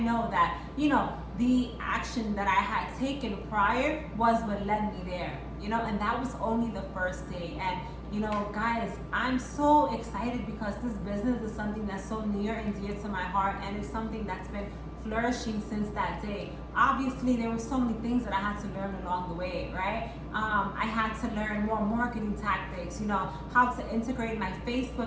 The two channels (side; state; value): both; identical; correlation 1.00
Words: that, the action that I had taken prior was what led me there, and that was only the first day. And guys, I'm so excited because this business is something that's so near and dear to my heart, and it's something that's been flourishing since that day. Obviously, there were so many things that I had to learn along the way, right? I had to learn more marketing tactics, how to integrate my